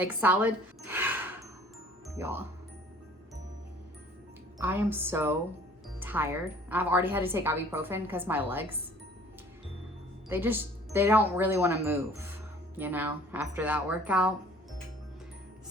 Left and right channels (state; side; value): normal; both; correlation 0.52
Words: salad. Y'all, I am so tired. I've already had to take ibuprofen because my legs, they don't really want to move, you know, after that workout.